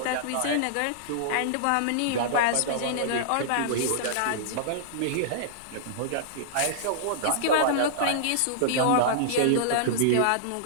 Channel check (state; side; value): different; both; correlation -0.02